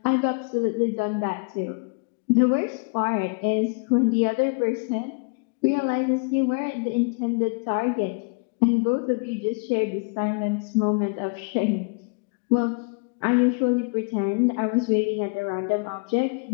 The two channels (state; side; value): quieter; right; 32.6 dB